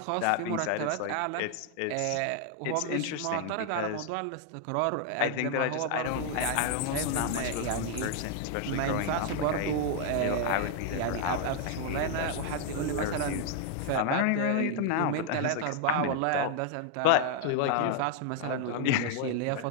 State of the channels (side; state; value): both; different; correlation 0.00